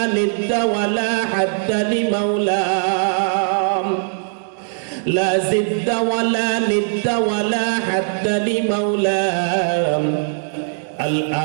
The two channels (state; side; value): silent; left; digital silence